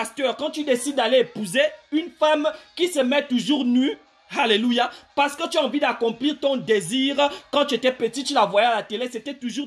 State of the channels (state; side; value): identical; both; correlation 1.00